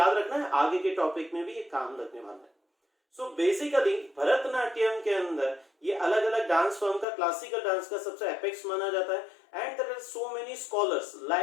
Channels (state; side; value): drops out; right; at 7.1 s